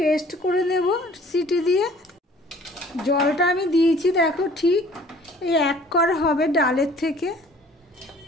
করে নেব সিটি দিয়ে। জলটা আমি দিয়েছি দেখো, ঠিক এই 1 কর হবে ডালের থেকে।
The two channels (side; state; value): both; normal; correlation 0.53